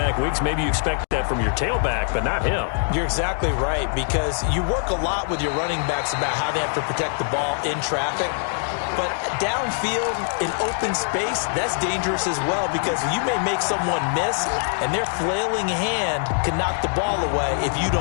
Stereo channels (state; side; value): silent; right; 63 dB below the other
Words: weeks, maybe you expect that that from your tailback, but not him. You're exactly right, because you work a lot with your running backs about how they have to protect the ball in traffic. But downfield, in open space, that's dangerous as well, because you may make someone miss, and their flailing hand can knock the ball away if you